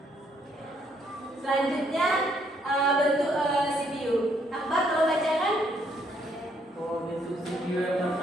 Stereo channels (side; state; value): both; normal; correlation 0.70